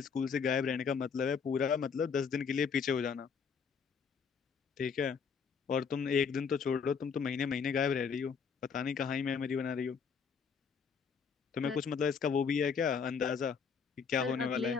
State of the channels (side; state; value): right; quieter; 6.1 dB